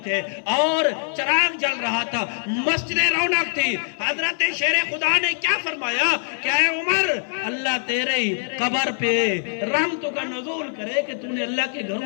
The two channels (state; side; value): silent; right; 60 dB below the other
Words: تھے اور چراغ جل رہا تھا، مسجد رونق تھی۔ حضرت شیر خدا نے کیا فرمایا کہ اے عمر، اللہ تیرے قبر پہ رحمتوں کا نزول کرے کہ تو نے اللہ کے